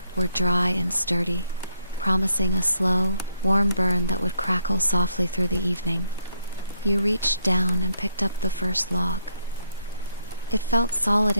were dry and sturdy, promising a slow, warm burn that would crackle softly through the evening. You reached down and picked up the first log. It felt solid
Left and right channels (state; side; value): inverted; both; correlation -0.74